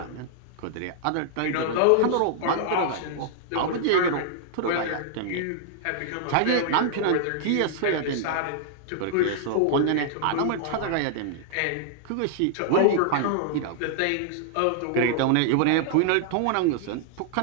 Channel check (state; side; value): different; both; correlation -0.01